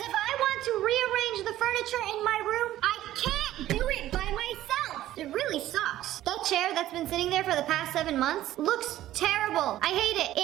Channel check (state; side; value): quieter; left; 13.9 dB